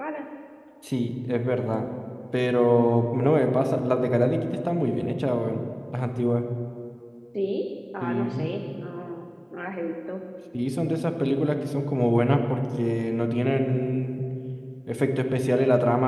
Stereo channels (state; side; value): identical; both; correlation 1.00